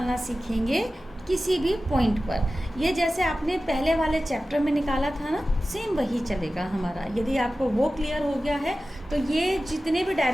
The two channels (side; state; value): both; normal; correlation 0.95